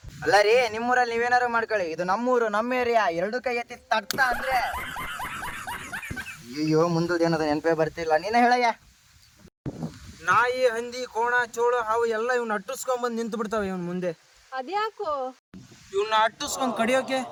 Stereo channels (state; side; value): identical; both; correlation 1.00